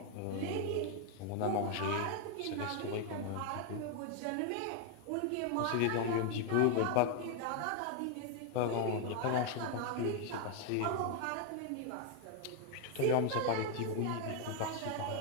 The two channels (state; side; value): different; both; correlation 0.00